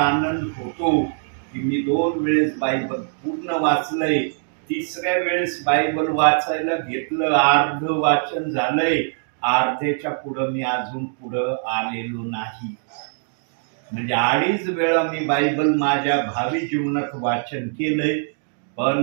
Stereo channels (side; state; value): left; silent; digital silence